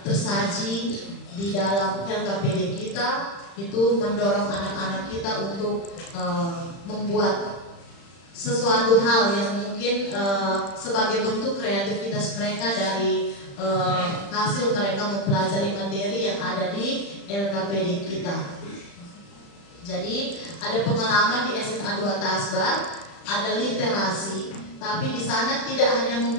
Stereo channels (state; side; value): late; right; 35 ms